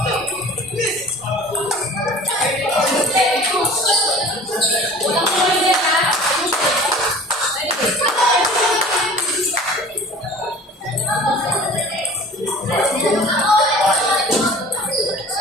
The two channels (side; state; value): both; normal; correlation 0.44